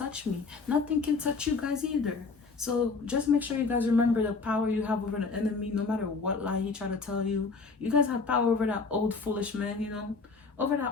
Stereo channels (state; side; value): quieter; right; 4.4 dB